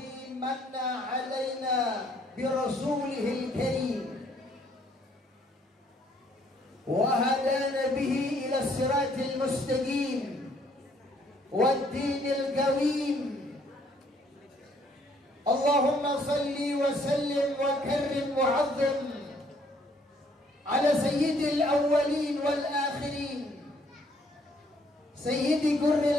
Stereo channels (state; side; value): normal; both; correlation 0.65